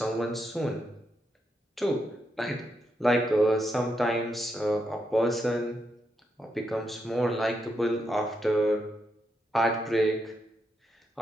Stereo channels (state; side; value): normal; both; correlation 0.82